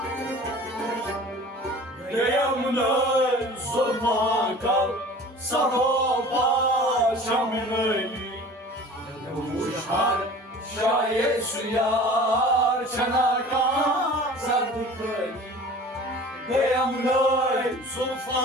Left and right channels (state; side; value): normal; both; correlation 0.42